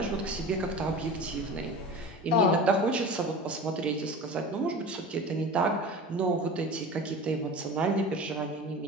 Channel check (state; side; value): normal; both; correlation 0.34